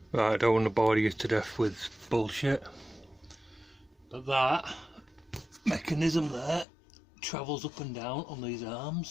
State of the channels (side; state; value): right; drops out; at 6.7 s